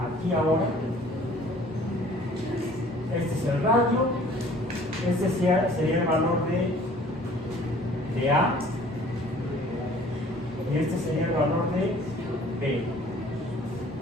aquí ahora. Este es el radio, este sería el valor de A y este sería el valor de B.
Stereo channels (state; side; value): normal; both; correlation 0.52